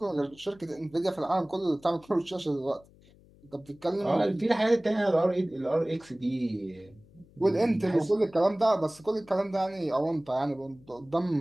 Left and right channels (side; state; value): left; noise; hum, 27 dB below the sound